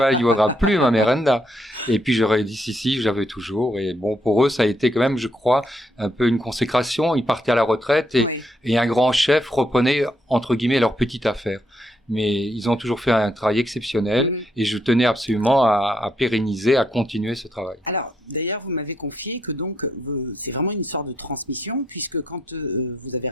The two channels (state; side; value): normal; both; correlation 0.75